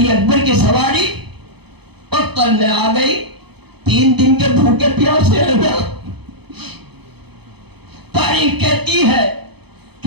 اکبر کی سواری مقتل میں آ گئی. 3 دن کے بھوکے پیاسے ہیں نا. تاریخ کہتی ہے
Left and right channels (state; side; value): late; left; 0.98 ms